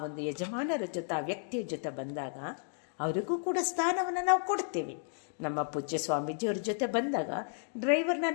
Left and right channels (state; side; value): silent; right; digital silence